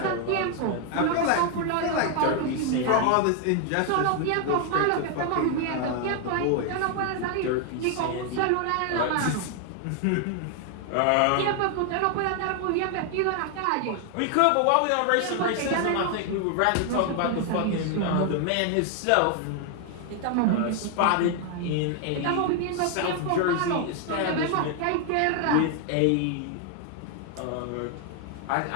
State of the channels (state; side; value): different; both; correlation 0.00